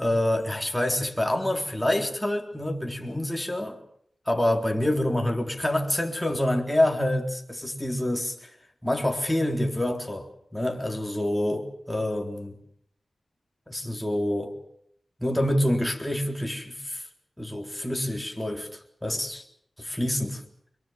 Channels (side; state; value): both; normal; correlation 0.97